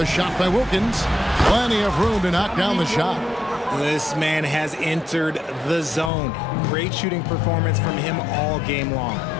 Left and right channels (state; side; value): drops out; right; at 6.1 s